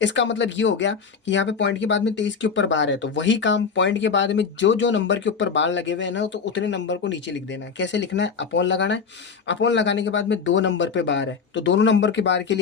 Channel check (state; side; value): quieter; right; 5.7 dB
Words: इसका मतलब ये हो गया कि यहाँ पे पॉइंट के बाद में 23 के ऊपर बार है, तो वही काम पॉइंट के बाद में जो जो नंबर के ऊपर बार लगे हुए हैं ना, तो उतने नंबर को नीचे लिख देना है। कैसे लिखना है? अपॉन लगाना है। अपॉन लगाने के बाद में दो नंबर पे बार है तो दोनों नंबर के बार के